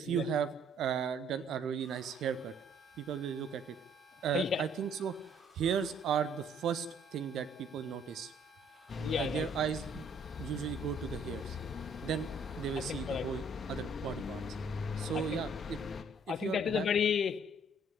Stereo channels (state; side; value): normal; both; correlation 0.61